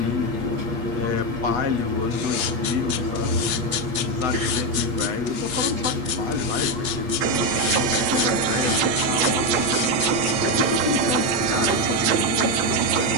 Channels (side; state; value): left; late; 7.9 ms